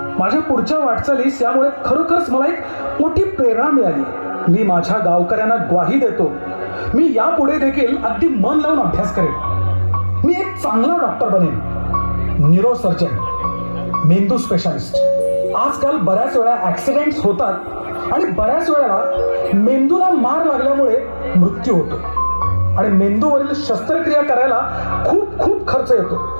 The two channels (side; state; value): both; inverted; correlation -1.00